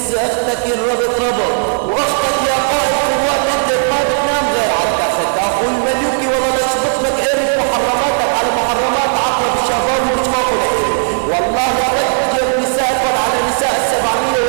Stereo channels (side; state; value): left; silent; 64 dB below the other